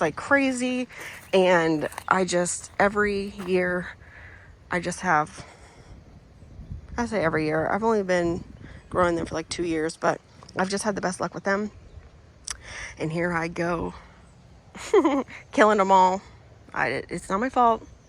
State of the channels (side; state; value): both; identical; correlation 1.00